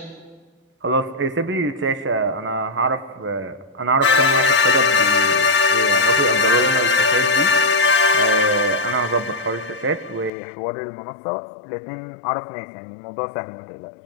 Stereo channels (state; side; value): drops out; right; at 10.3 s